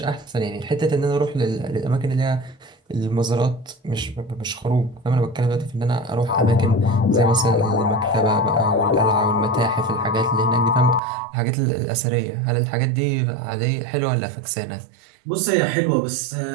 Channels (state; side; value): drops out; left; at 11.0 s